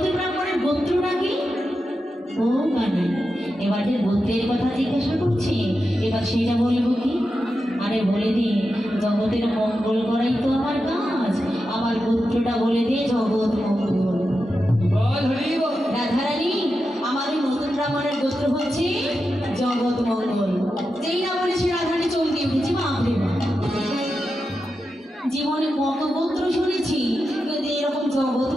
ব্রাহ্মণের গোত্রটা কি? ও কানাই, এবার যে গোত্রের কথা জিজ্ঞাসা করছি, এবার সেটা বলবো কি? আরে বলে দিই, জগতের মঙ্গল করাই তো আমার কাজ, আমার গোত্রটা বলে দিয়ে জগৎ মঙ্গল। রাধারানী, আমার ওই নতুন ব্রাহ্মণের গোত্র হচ্ছে জগৎ মঙ্গল। যেই না বলেছি রাধারানী চমকে উঠেছি, বাপরে বাপ। জীবনে কত গোত্র শুনেছি, কিন্তু এরকম জগৎ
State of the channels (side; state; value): both; normal; correlation 0.89